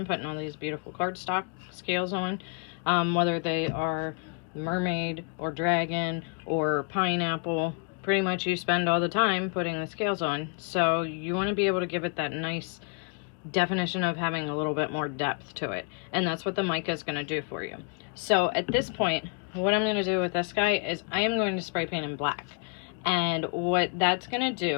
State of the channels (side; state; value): right; quieter; 38.0 dB